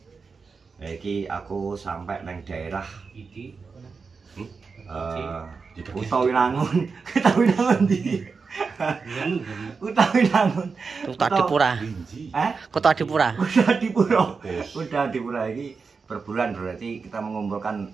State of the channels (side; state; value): left; quieter; 4.9 dB